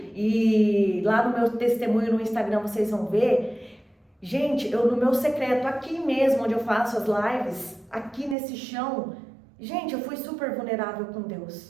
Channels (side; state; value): left; drops out; at 8.3 s